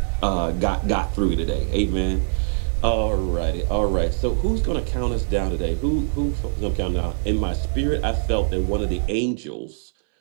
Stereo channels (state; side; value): silent; left; 62 dB below the other